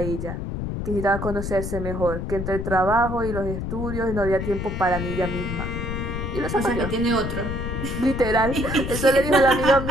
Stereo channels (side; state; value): left; noise; rumble, 4 dB below the sound